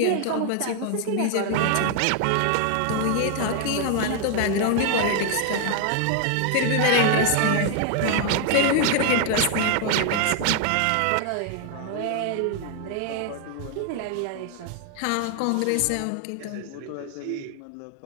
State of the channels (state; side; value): different; both; correlation 0.00